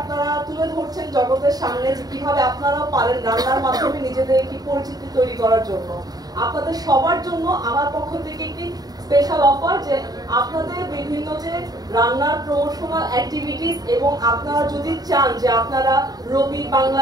তুলে ধরছেন জগতের সামনে, যে কিভাবে আপনারাও পারেন রান্নার মাধ্যমে নিজেদের একটি পরিচিতি তৈরি করার জন্য। আপনাদের সবার জন্য আমার পক্ষ থেকে একটি স্পেশাল অফার, যে আপনাদের বিভিন্ন যে রান্নার প্রমোশনাল অ্যাক্টিভিটিস এবং আপনারা যদি চান যে আপনারা রবি,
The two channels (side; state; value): left; late; 0.18 ms